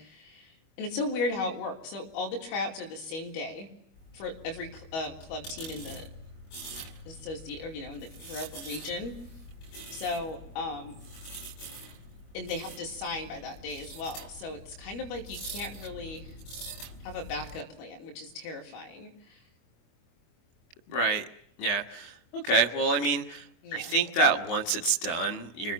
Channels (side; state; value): right; late; 25 ms